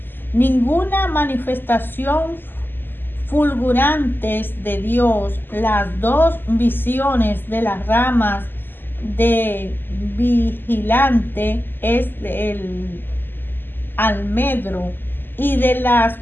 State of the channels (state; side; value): late; right; 0.095 ms